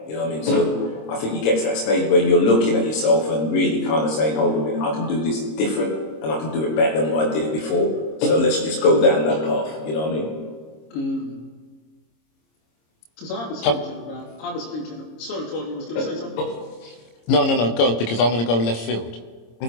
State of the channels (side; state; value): right; late; 26 ms